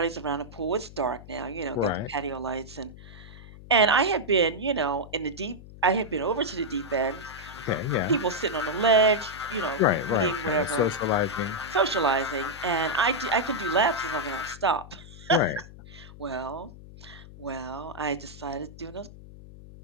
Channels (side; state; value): left; noise; hum, 17 dB below the sound